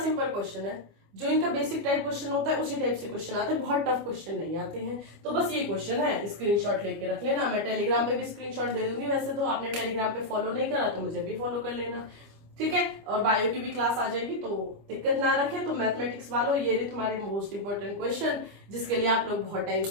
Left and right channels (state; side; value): late; left; 25 ms